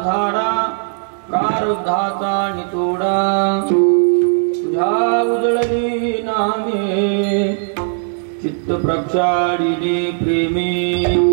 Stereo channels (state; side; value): silent; left; digital silence